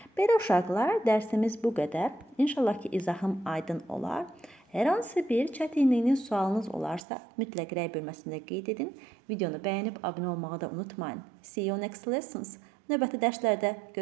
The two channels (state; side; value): drops out; left; at 7.0 s